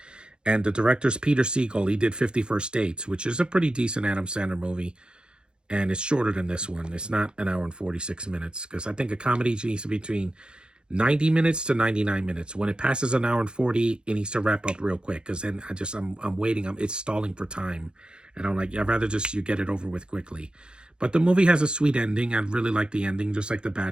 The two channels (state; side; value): late; left; 0.050 ms